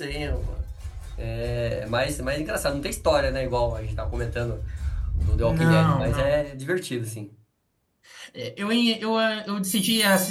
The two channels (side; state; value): both; identical; correlation 1.00